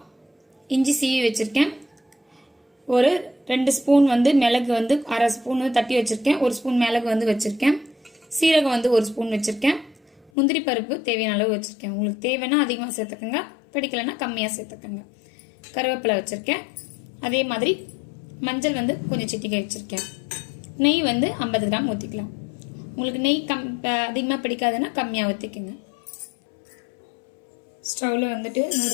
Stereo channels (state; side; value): drops out; right; at 10.3 s